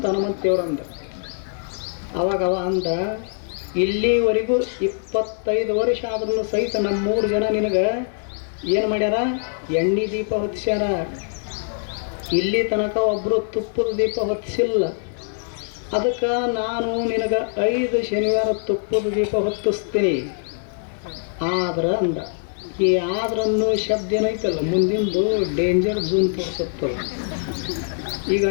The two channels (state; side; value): silent; right; digital silence